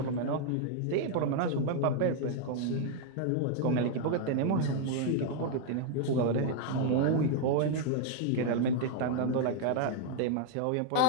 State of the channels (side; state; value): both; different; correlation 0.00